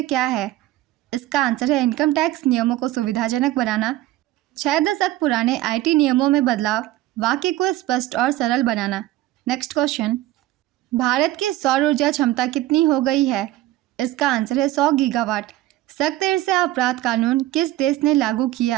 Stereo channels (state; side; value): quieter; left; 15.5 dB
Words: क्या है? इसका आंसर है इनकम टैक्स नियमों को सुविधाजनक बनाना, 6 दशक पुराने आईटी नियमों में बदलाव, वाक्य को स्पष्ट और सरल बनाना। नेक्स्ट क्वेश्चन, भारत की सौर ऊर्जा क्षमता कितनी हो गई है? इसका आंसर है 100 गीगावाट। सख्त ईर्ष्या अपराध कानून किस देश ने लागू